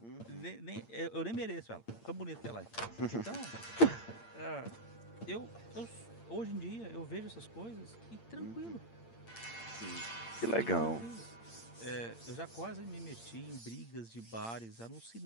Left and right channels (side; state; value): right; late; 8.7 ms